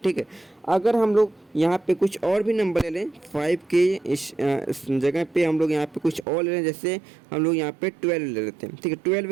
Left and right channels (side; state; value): left; drops out; at 6.2 s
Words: ठीक है, अगर हम लोग यहाँ पे कुछ और भी नंबर ले लें 5 के इस जगह पे हम लोग यहाँ पे कुछ और ले लें, जैसे हम लोग यहाँ पे 12 ले लेते हैं। ठीक है,